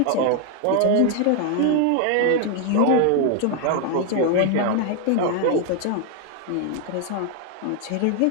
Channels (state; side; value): different; both; correlation 0.00